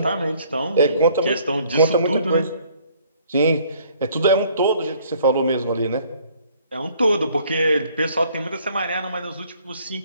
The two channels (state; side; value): inverted; both; correlation -0.60